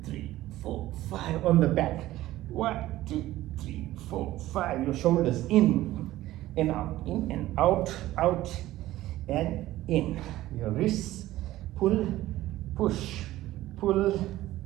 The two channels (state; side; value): quieter; left; 15.7 dB